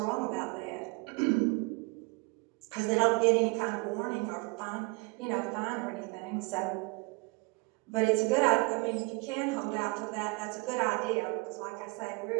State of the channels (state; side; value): quieter; left; 27.8 dB